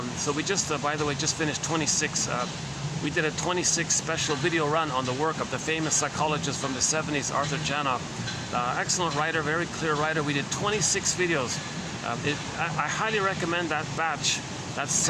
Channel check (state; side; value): identical; both; correlation 1.00